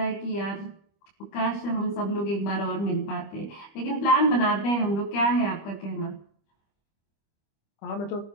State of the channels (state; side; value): late; right; 25 ms